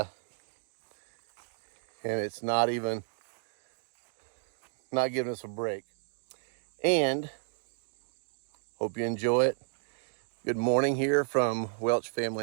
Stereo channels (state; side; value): silent; left; digital silence